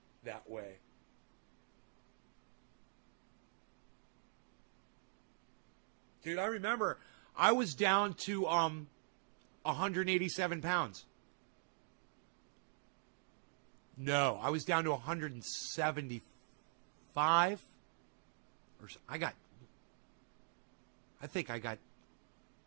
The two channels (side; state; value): left; silent; digital silence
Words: that way. Dude, I remember I was down to 187 pounds. No, I was down to 175. I think I got